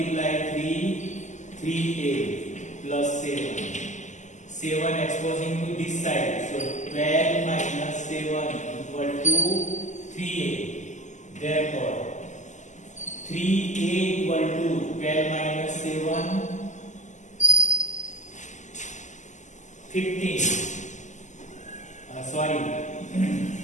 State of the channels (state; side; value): late; right; 0.35 ms